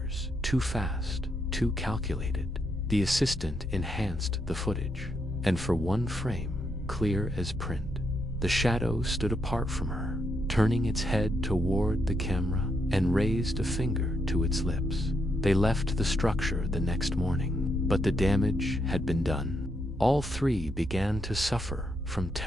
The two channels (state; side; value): normal; both; correlation 0.79